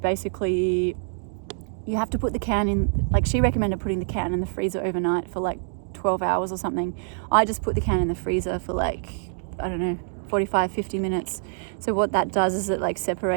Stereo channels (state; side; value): silent; left; 61 dB below the other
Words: you have to put the can in, like she recommended putting the can in the freezer overnight for like 12 hours or something. I just put the can in the freezer for like, I don't know, 45, 50 minutes. So what that does is it like